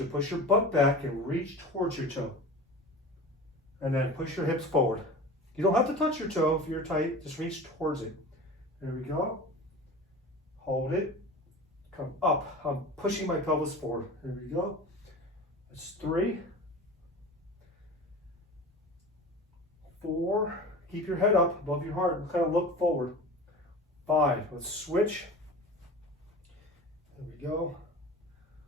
to push your butt back and reach towards your toe. And then push your hips forward. You don't have to touch your toe if you're tight, just reach towards it. There we go. Hold it. Come up. I'm pushing my pelvis forward. There we go. That's 3. 4, keep your head up above your heart and kind of look forward. 5, let's switch. There we go.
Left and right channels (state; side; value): normal; both; correlation 0.35